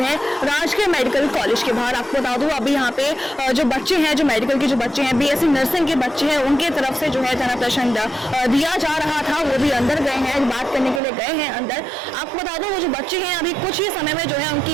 हैं राजकीय मेडिकल कॉलेज के बाहर। आपको बता दूं अभी यहाँ पे जो बच्चे हैं, जो मेडिकल के जो बच्चे हैं, बीएससी नर्सिंग के बच्चे हैं, उनके तरफ से जो है तना प्रश्न दिया जा रहा था। वो भी अंदर गए हैं, बात करने के लिए गए हैं अंदर। आपको बता दूं वो जो बच्चे हैं अभी कुछ ही समय में जो है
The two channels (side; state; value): left; drops out; at 11.0 s